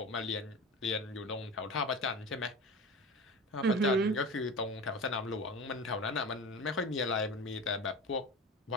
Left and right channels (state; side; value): normal; both; correlation 0.30